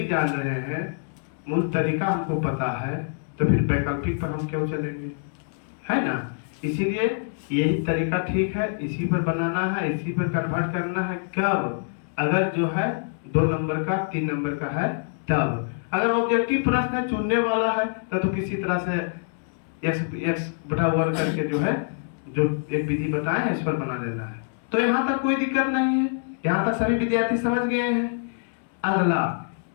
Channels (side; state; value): right; silent; digital silence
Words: जान रहे हैं, मूल तरीका हमको पता है, तो फिर वैकल्पिक पर हम क्यों चलेंगे, है ना? इसीलिए यही तरीका ठीक है, इसी पर बनाना है, इसी पर कन्वर्ट करना है। कब? अगर जो है 2 नंबर का 3 नंबर का है तब। अगर ऑब्जेक्टिव प्रश्न चुनने वाला है तो किसी तरह से x बटा 1 करके जो है जो एक विधि बताए हैं इस पर बना देना है। तो यहाँ तक कोई दिक्कत नहीं है, यहाँ तक सभी विद्यार्थी समझ गए हैं। अगला,